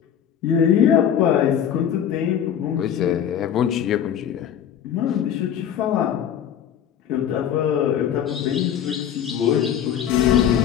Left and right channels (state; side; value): quieter; right; 9.3 dB